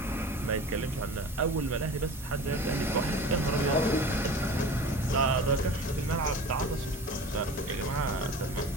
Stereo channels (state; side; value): normal; both; correlation 0.37